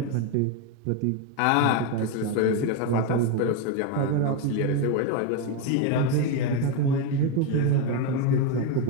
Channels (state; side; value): different; both; correlation 0.03